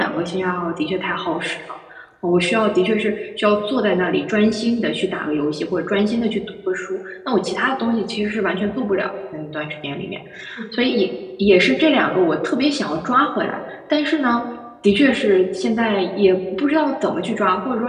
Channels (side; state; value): both; identical; correlation 1.00